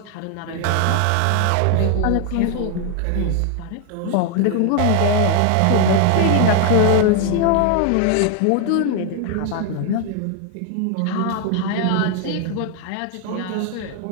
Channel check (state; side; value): different; both; correlation 0.00